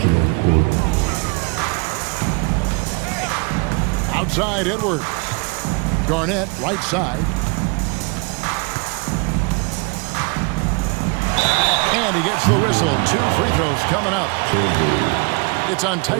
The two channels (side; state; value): left; quieter; 31.5 dB